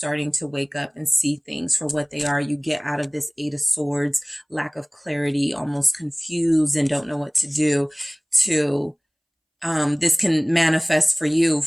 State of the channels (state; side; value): identical; both; correlation 1.00